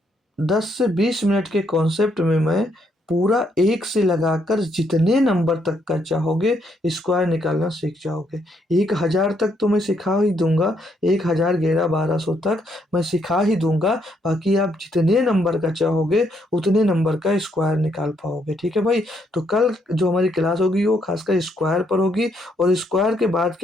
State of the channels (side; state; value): both; normal; correlation 0.74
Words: 10 से 20 मिनट के कॉन्सेप्ट में मैं पूरा एक से लगाकर जितने नंबर तक का चाहोगे स्क्वायर निकालना सीख जाओगे। 1000 तक तो मैं सिखा ही दूंगा, 1000 11 1200 तक मैं सिखा ही दूंगा। बाकी आप जितने नंबर का चाहोगे उतने नंबर का स्क्वायर निकाल पाओगे, ठीक है भाई। तो कल जो हमारी क्लास होगी वो खासकर स्क्वायर पर होगी, और स्क्वायर के बाद